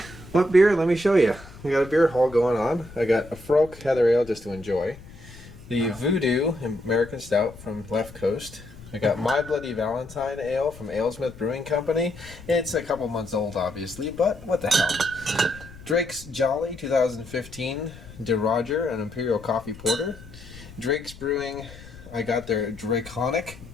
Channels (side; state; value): left; noise; rumble, 18 dB below the sound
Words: What beer? Let me show you. We got a beer haul going on. I got a Frolk Heather Ale just to enjoy. The Voodoo American Stout from Left Coast. I got My Bloody Valentine Ale from AleSmith Brewing Company. It's a couple months old, obviously, but what the hell. Drake's Jolly 2015 De Roger, an Imperial Coffee Porter. Drake's Brewing, I got their Draconic